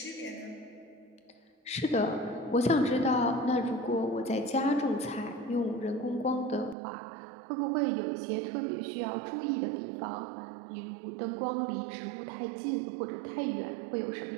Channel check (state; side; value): drops out; left; at 6.8 s